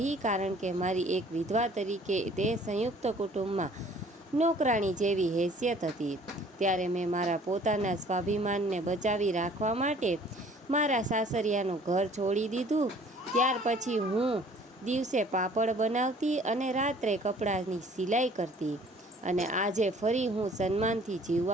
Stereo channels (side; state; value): both; normal; correlation 0.54